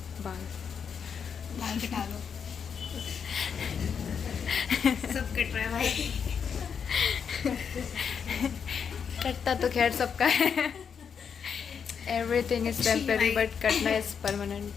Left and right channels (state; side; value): quieter; right; 6.8 dB